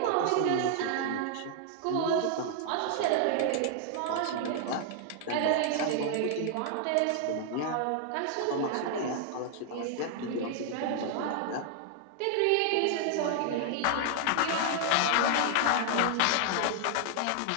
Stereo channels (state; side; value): different; both; correlation 0.00